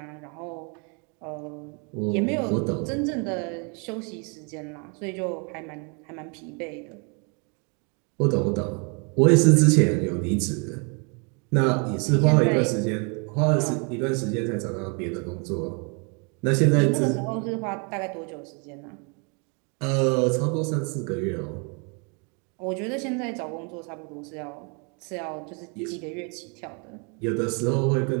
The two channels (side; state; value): left; quieter; 35.1 dB